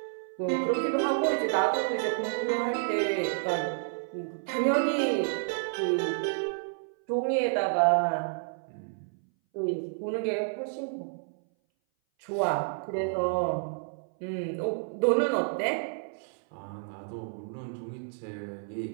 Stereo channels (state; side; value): silent; left; 58 dB below the other